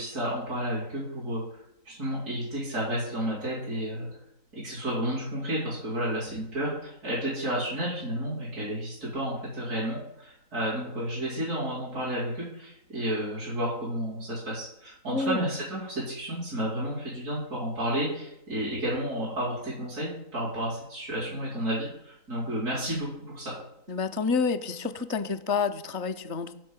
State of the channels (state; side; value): late; left; 3.9 ms